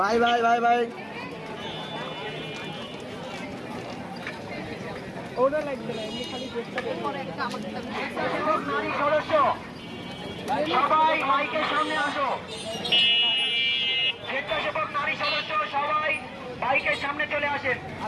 বাই বাই বাই। ওটা লাগবে না, এমনি খালি চেষ্টা করে। নারী সদস্য সবাই মাইকের সামনে আসো। স্বেচ্ছাসেবক নারী সদস্য সবাই বাইকের সামনে চলে আসেন।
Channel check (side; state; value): both; identical; correlation 1.00